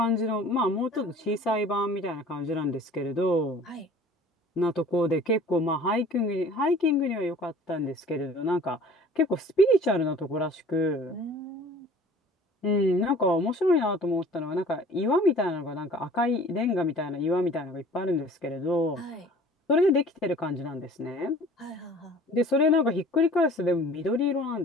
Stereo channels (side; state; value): both; normal; correlation 0.48